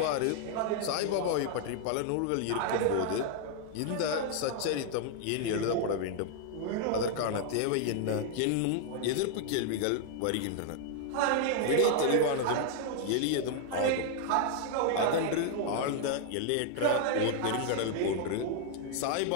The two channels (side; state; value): both; different; correlation 0.00